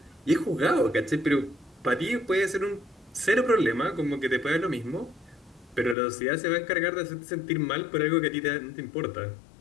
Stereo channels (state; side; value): drops out; right; at 6.0 s